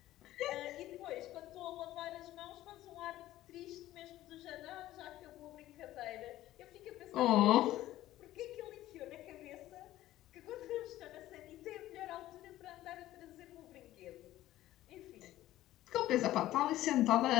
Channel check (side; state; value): right; quieter; 14.8 dB